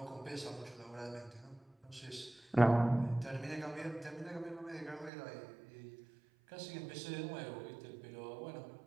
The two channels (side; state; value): left; drops out; at 5.1 s